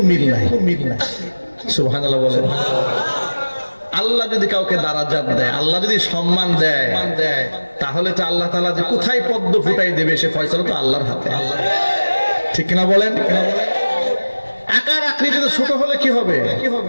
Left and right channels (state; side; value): inverted; both; correlation -1.00